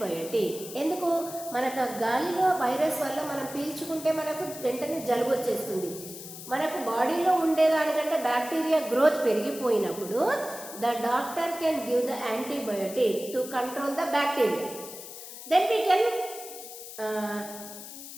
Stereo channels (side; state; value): left; noise; hiss, 12 dB below the sound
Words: ఎందుకు? మనకు గాలిలో వైరస్ వల్ల మనం పీల్చుకుంటే మనకు వెంటనే జలుబు వచ్చేస్తుంది. మనకు బాడీలో ఉండేదానికంటే బ్యాక్టీరియా గ్రోత్ పెరిగిపోయినప్పుడు the doctor can give the antibiotic to control the bacteria. Then